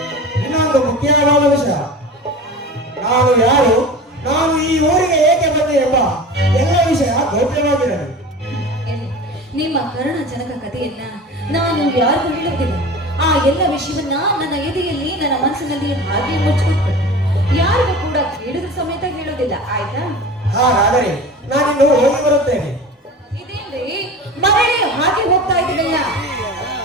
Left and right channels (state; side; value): normal; both; correlation 0.34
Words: ಇನ್ನೊಂದು ಮುಖ್ಯವಾದ ವಿಷಯ. ನಾನು ಯಾರು, ನಾನು ಈ ಊರಿಗೆ ಏಕೆ ಬಂದೆ ಎಂಬ ಎಲ್ಲ ವಿಷಯ ಗೌಪ್ಯವಾಗಿರಲಿ. ನಿಮ್ಮ ಕರುಣಜನಕ ಕಥೆಯನ್ನ ನಾನು ಯಾರಿಗೂ ಹೇಳುತ್ತಿಲ್ಲ. ಆ ಎಲ್ಲ ವಿಷಯವನ್ನ ನನ್ನ ಎದೆಯಲ್ಲಿ, ನನ್ನ ಮನಸ್ಸಿನಲ್ಲಿ ಹಾಗೆ ಮುಚ್ಚಿಕೊಟ್ಟು ಯಾರಿಗೂ ಕೂಡ ಕೇಳಿದ ಸಮೇತ ಹೇಳೋದಿಲ್ಲ, ಆಯ್ತಾ? ಹಾಗಾದರೆ ನಾನಿನ್ನು ಹೋಗಿ ಬರುತ್ತೇನೆ. ಇದೇನ್ರಿ ಮರಳಿ ಹಾಗೆ ಹೋಗ್ತಾ ಇದ್ದೀನಲ್ಲ?